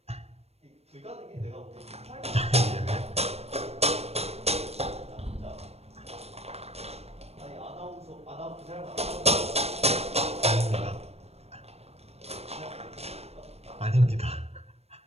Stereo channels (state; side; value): late; left; 0.30 ms